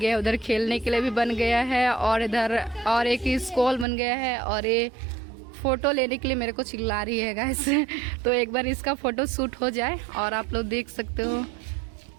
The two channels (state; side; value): drops out; left; at 3.9 s